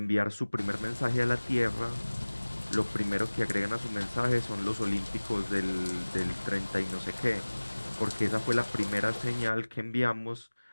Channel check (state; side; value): inverted; both; correlation -1.00